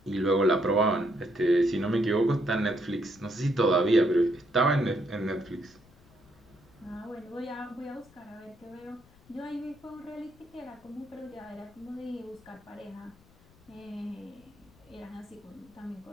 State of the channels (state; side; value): noise; left; rumble, 28 dB below the sound